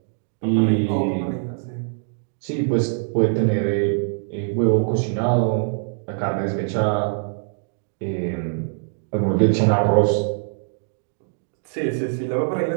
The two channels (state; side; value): silent; left; digital silence